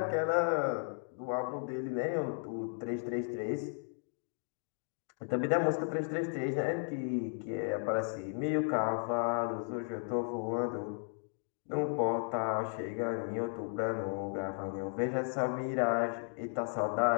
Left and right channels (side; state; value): right; silent; 54 dB below the other